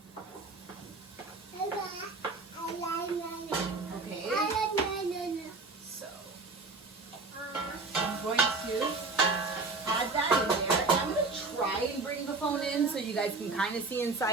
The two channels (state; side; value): quieter; left; 3.7 dB